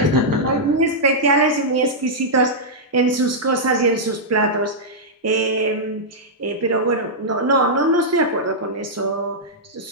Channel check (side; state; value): both; normal; correlation -0.09